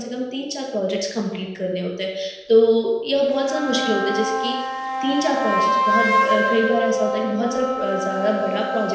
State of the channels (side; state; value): both; identical; correlation 1.00